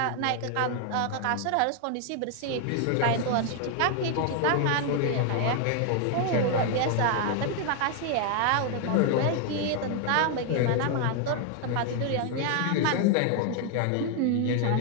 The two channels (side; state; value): both; different; correlation 0.00